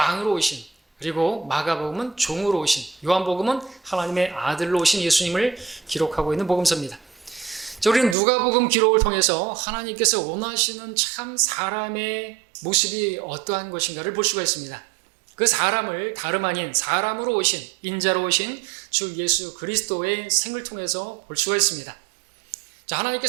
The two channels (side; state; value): left; drops out; at 8.2 s